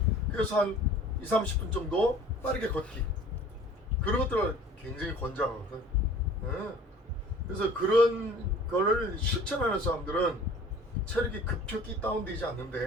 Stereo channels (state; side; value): normal; both; correlation 0.48